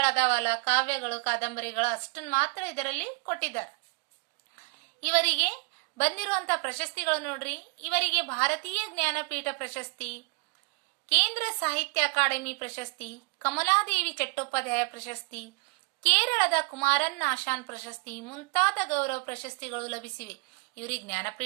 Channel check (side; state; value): left; quieter; 33.6 dB